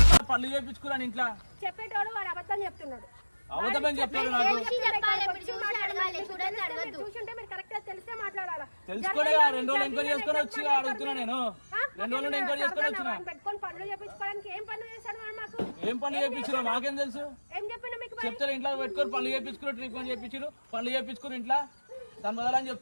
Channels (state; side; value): inverted; both; correlation -1.00